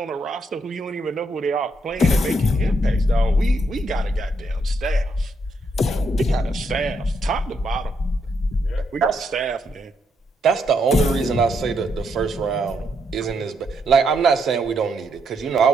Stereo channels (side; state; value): both; normal; correlation 0.77